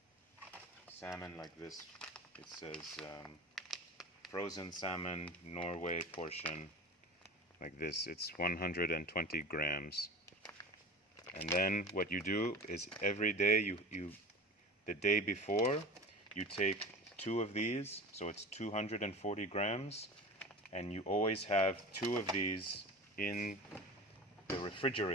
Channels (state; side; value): normal; both; correlation 0.33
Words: salmon like this. It says frozen salmon Norway portion, like this. It's 120 grams. And then what you do is every day, the day before, you take 2 of these, so it's 240 grams, and you always have 2 of these in the